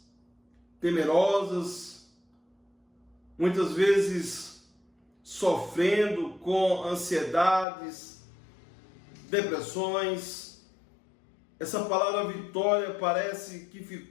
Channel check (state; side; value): drops out; right; at 7.7 s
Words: temerosas, muitas vezes sofrendo com ansiedades, depressões, essa palavra vitória parece que